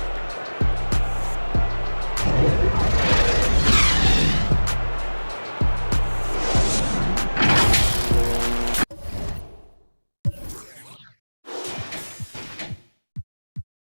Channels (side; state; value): both; inverted; correlation -1.00